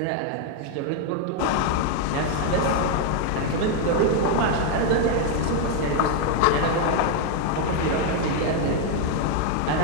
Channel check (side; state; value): both; different; correlation 0.01